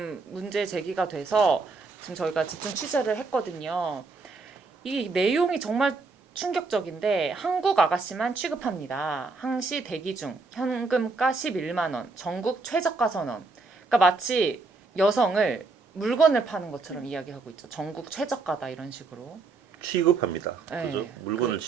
문제 제기가 돼서 지금 저희가 집중 취재를 했거든요. 이 내용이 정말 충격적인데 한국 아가씨만 취급합니다. 항시 대기 중 현금가 11만 원, 전국 최저가 선언. 그러니까 마치 여성을 물건을 파는 것처럼 이야기하고 있죠. 전국 최저가다 이런 식으로. 취급합니다. 네. 그죠? 물건을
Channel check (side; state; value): left; quieter; 3.9 dB